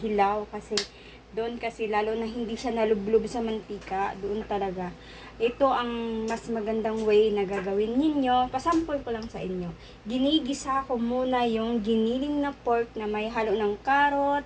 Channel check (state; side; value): identical; both; correlation 1.00